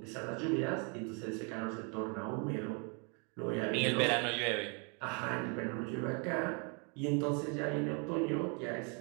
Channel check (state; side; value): quieter; left; 35.9 dB